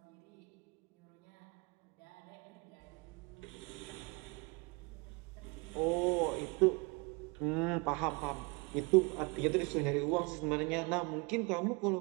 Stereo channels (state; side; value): quieter; left; 29.2 dB